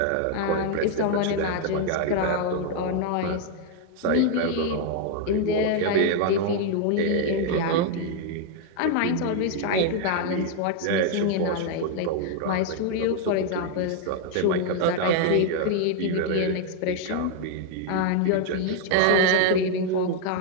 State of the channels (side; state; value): both; different; correlation 0.00